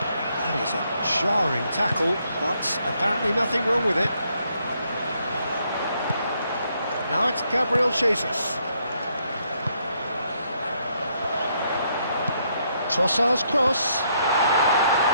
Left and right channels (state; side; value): inverted; both; correlation -0.73